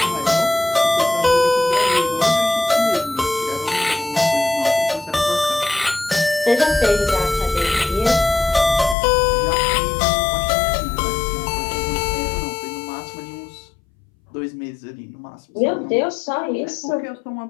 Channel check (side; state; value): right; drops out; at 9.0 s